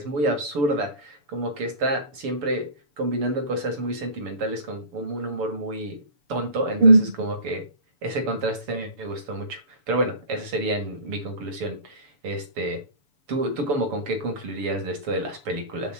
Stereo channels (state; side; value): late; left; 7.0 ms